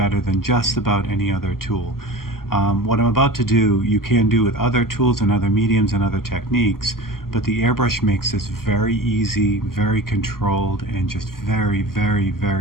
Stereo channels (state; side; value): late; right; 0.92 ms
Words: than just about any other tool. What I'm about to do, you can do with other tools and other mediums and other techniques, but the airbrush makes this very easy, very controlled, and just very, very,